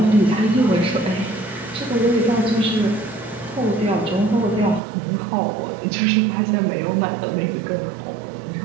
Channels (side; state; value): left; drops out; at 4.8 s